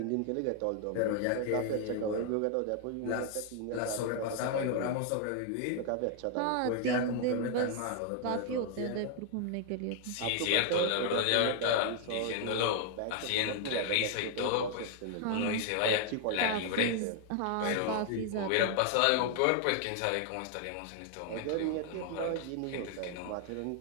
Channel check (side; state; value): both; different; correlation 0.00